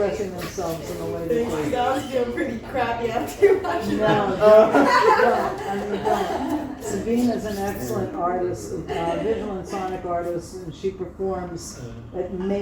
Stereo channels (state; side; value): identical; both; correlation 1.00